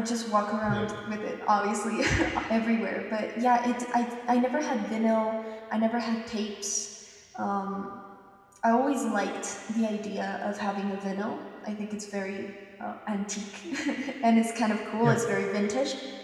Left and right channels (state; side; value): identical; both; correlation 1.00